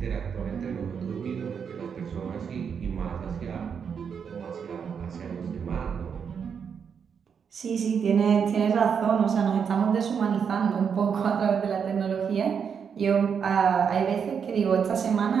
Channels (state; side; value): quieter; left; 6.9 dB